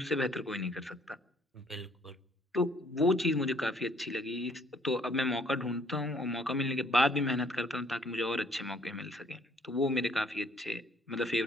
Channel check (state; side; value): normal; both; correlation 0.62